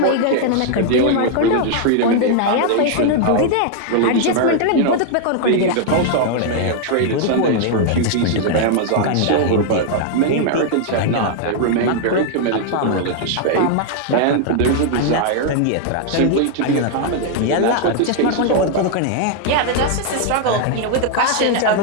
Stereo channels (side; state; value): both; different; correlation 0.00